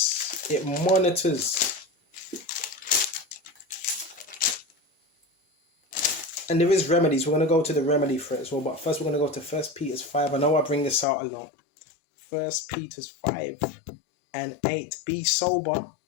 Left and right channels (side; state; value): right; drops out; at 11.1 s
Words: It monitors. And there is remedies. We're going to go to the remedy for it as well. But first we're going to go to 1 Peter 5. I know I bring this out a lot. 1 Peter 5 and 8. Be sober.